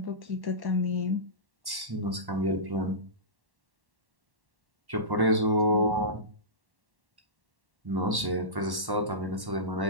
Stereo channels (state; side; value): late; left; 1.1 ms